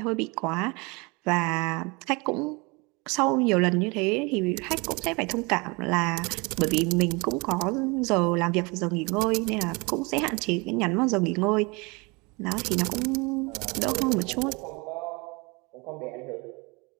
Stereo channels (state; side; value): quieter; left; 27.7 dB